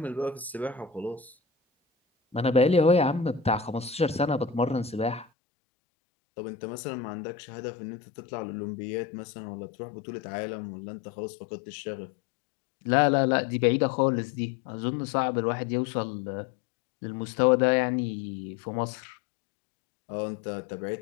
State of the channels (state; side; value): drops out; right; at 5.2 s